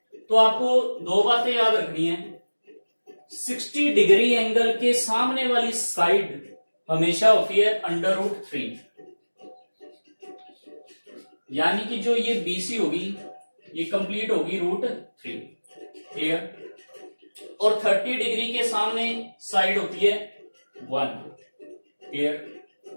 तो आपको 2 बातें याद रखनी है। 60 डिग्री एंगल के सामने वाली साइड हमेशा होती है √3, यानी कि जो ये BC होगी, ये कंप्लीट होगी √3। क्लियर? और 30 डिग्री के सामने साइड होती है 1। क्लियर?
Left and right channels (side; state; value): both; inverted; correlation -1.00